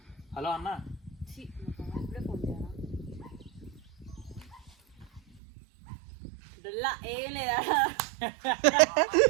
హలో అన్న ఇప్పుడే ఫోన్ చేయాలా ఏం లేదా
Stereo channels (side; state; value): left; drops out; at 5.4 s